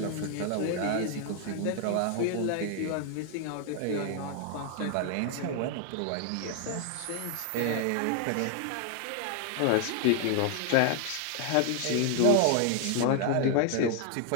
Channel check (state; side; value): different; both; correlation 0.00